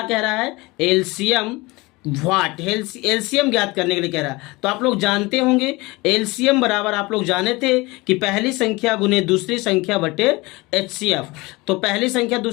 कह रहा है, एलसीएम एलसीएम ज्ञात करने के लिए कह रहा है। तो आप लोग जानते होंगे एलसीएम बराबर, आप लोग जाने थे कि पहली संख्या गुने दूसरी संख्या बटे HCF। तो पहली संख्या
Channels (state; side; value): quieter; right; 23.1 dB